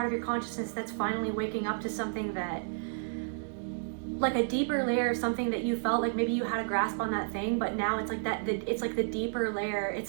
of your consciousness that's finally waking up to something that, like a deeper layer, something that you felt like maybe you had a grasp on that thing, but now it's like that, it's like the deeper layer.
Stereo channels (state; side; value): silent; left; digital silence